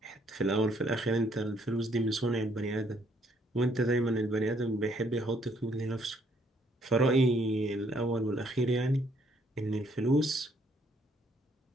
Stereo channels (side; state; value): both; normal; correlation 0.68